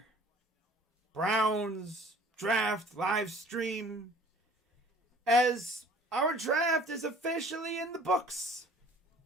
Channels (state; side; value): normal; both; correlation 0.51